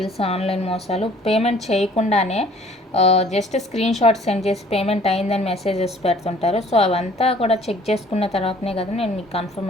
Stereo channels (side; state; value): both; normal; correlation 0.54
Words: ఆన్లైన్ మోసాలు. పేమెంట్ చేయకుండానే జస్ట్ స్క్రీన్ షాట్ సెండ్ చేసి పేమెంట్ అయిందని మెసేజెస్ పెడుతుంటారు. సో అవంతా కూడా చెక్ చేసుకున్న తర్వాతనే కదా నేను మీకు